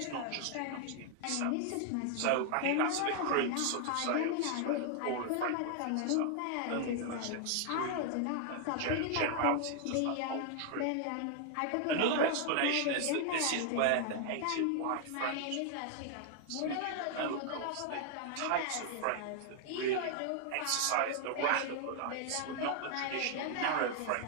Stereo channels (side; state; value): both; different; correlation 0.00